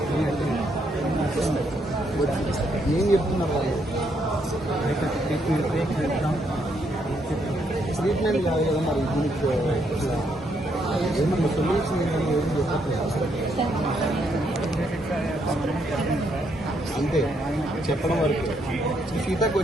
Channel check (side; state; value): both; normal; correlation 0.75